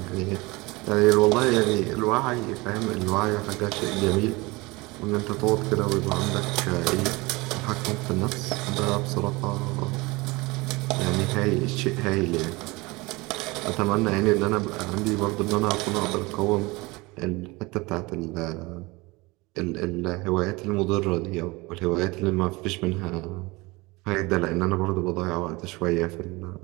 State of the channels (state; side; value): quieter; left; 23.5 dB